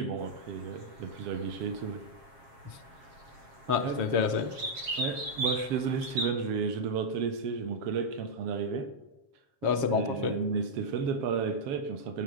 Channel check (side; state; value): left; late; 7.5 ms